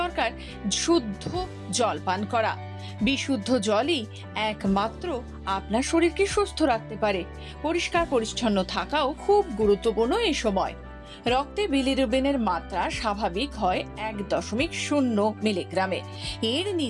দরকার শুদ্ধ জল পান করা। বিশুদ্ধ জলই একমাত্র আপনার শরীরকে সুস্থ রাখতে পারে। পরিষ্কার পরিচ্ছন্ন থাকাও খুব গুরুত্বপূর্ণ এই সময়। রক্তে বিলিরুবিনের মাত্রা স্বাভাবিক হয় 1.0 মিলিগ্রামে। এর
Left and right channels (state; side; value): identical; both; correlation 1.00